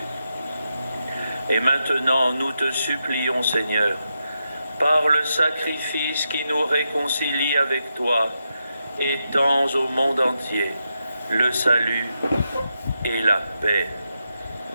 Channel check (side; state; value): both; inverted; correlation -0.86